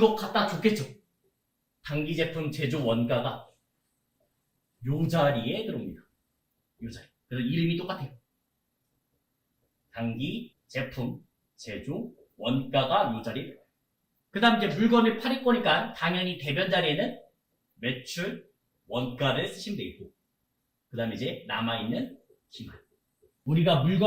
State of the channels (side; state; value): both; identical; correlation 1.00